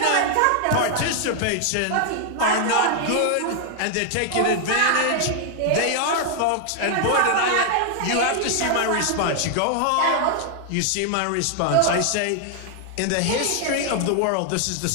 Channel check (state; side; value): different; both; correlation 0.00